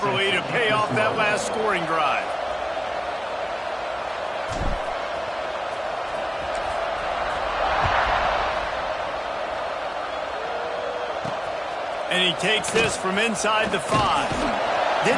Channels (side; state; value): both; identical; correlation 1.00